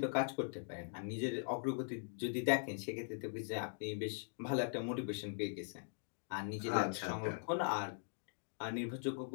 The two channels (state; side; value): silent; right; digital silence